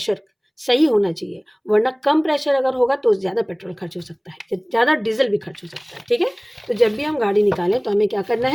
सही होना चाहिए, वरना कम प्रेशर अगर होगा तो ज़्यादा पेट्रोल खर्च हो सकता है, ज़्यादा डीजल भी खर्च हो सकता है, ठीक है। तो जब भी हम गाड़ी निकालें तो हमें क्या करना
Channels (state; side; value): identical; both; correlation 1.00